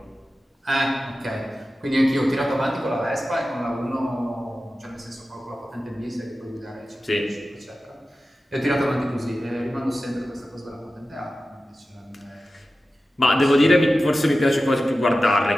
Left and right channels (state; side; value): normal; both; correlation 0.94